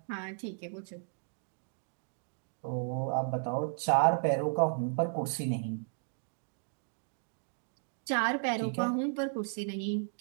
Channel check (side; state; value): left; silent; digital silence